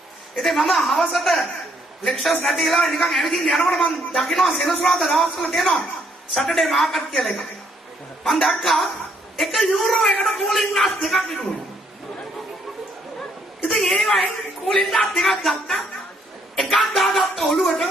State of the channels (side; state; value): both; normal; correlation 0.70